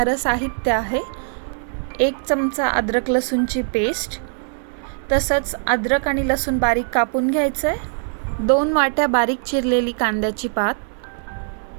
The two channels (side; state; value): left; silent; 65 dB below the other